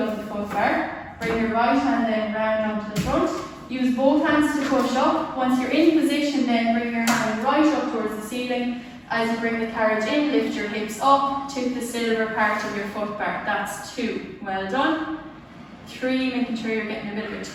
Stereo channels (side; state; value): both; identical; correlation 1.00